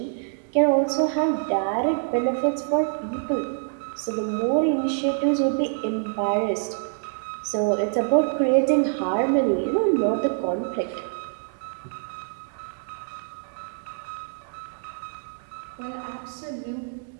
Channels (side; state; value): left; silent; digital silence